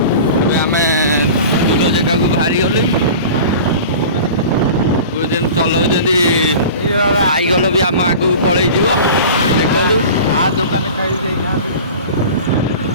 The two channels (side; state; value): both; inverted; correlation -0.37